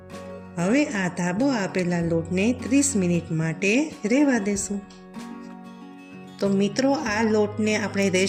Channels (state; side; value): identical; both; correlation 1.00